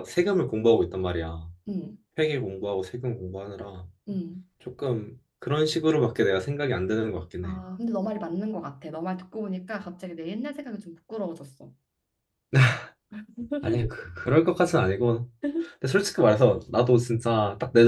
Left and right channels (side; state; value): both; identical; correlation 1.00